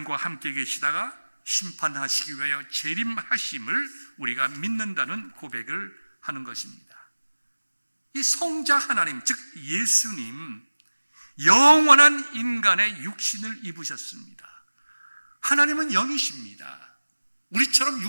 함께 계시다가 심판하시기 위하여 재림하심을 우리가 믿는다는 고백을 하는 것입니다. 이 성자 하나님, 즉 예수님, 영원한 인간의 육신을 입으셨습니다. 하나님은 영이십니다. 우리처럼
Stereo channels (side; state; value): both; inverted; correlation -1.00